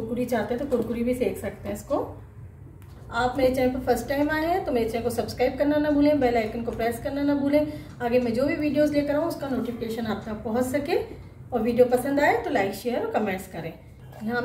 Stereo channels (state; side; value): identical; both; correlation 1.00